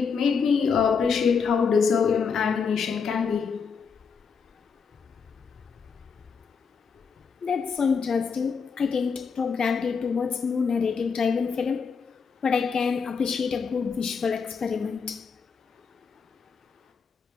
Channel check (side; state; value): right; quieter; 5.8 dB